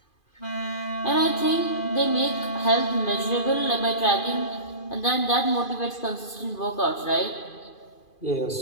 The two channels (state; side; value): late; right; 2.5 ms